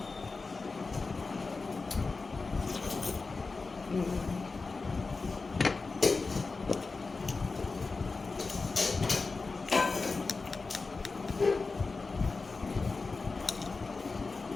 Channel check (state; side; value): quieter; right; 4.0 dB